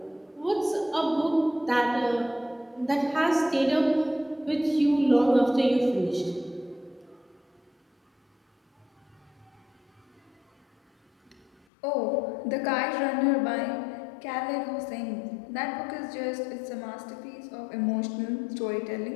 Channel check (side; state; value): right; drops out; at 11.5 s